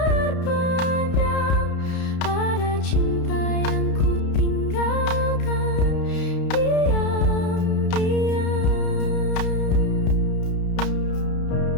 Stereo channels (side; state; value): right; late; 32 ms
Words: pada cinta yang ku tinggalkan diam-diam.